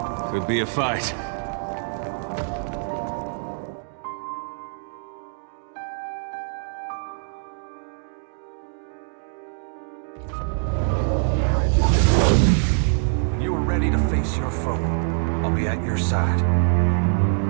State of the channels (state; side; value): silent; left; 62 dB below the other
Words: Could be a fight. You are ready to face your foe. I'll be at your side.